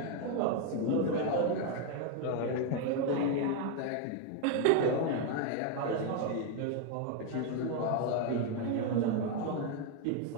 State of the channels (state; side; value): different; both; correlation 0.01